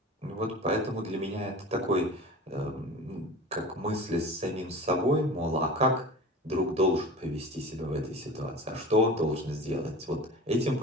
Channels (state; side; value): normal; both; correlation 0.36